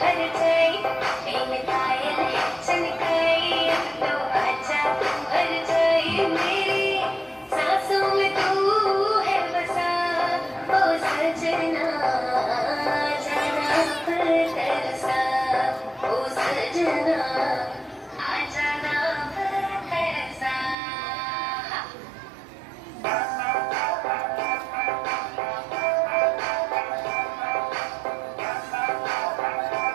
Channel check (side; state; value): left; drops out; at 20.8 s